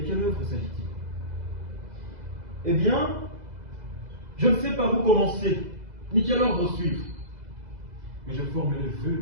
œuvre s'agit-il? Eh bien, je ne sais par où commencer, ni quel ordre suivre. Mais je forme le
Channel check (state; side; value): late; left; 2.0 ms